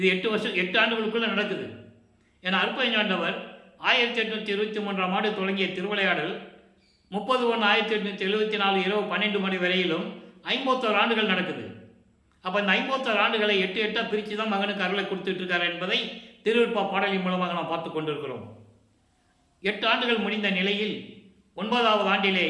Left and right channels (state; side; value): identical; both; correlation 1.00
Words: 8 ஆண்டுகளுக்குள்ளே நடக்குது. ஏன்னா அற்பஞாண்டவர் 1823ஆம் ஆண்டு தொடங்கிய திருவிளையாடல் 30/1/1874 இரவு 12 மணி வரையிலும் 51 ஆண்டுகள் நடக்குது. அப்போ இந்த 51 ஆண்டுகளை 8 பிரித்து தான் மகனுக்கு அருளை கொடுத்துட்டு இருக்கார் என்பதை திருவிற்பா பாடலின் மூலமாக நாம் பார்த்து கொண்டிருக்கிறோம். 8 ஆண்டுகள் முடிந்த நிலையில் 9வது ஆண்டிலே